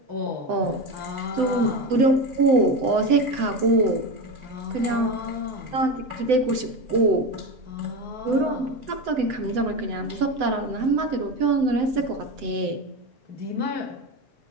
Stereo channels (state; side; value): late; left; 7.9 ms